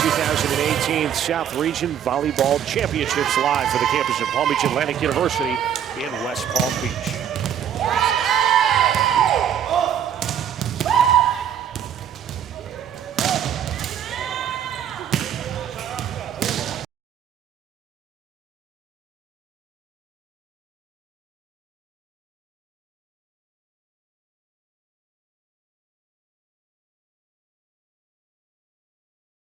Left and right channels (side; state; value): left; quieter; 9.2 dB